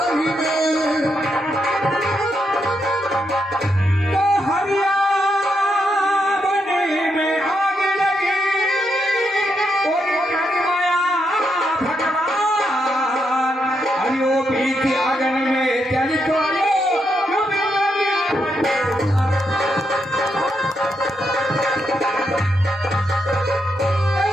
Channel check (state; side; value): normal; both; correlation 0.81